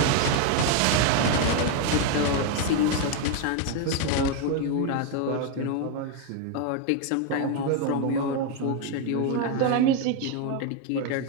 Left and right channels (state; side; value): different; both; correlation 0.01